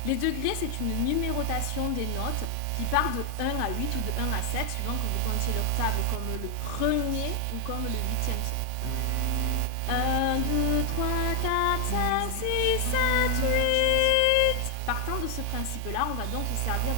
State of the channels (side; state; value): both; different; correlation 0.00